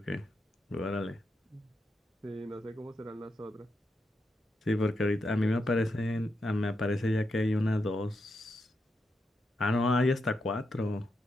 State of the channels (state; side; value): normal; both; correlation 0.84